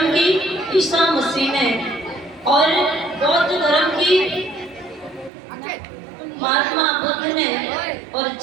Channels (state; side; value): drops out; left; at 5.3 s